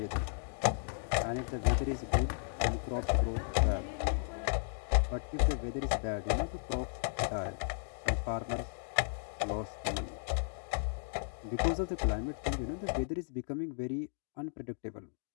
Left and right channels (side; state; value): right; silent; digital silence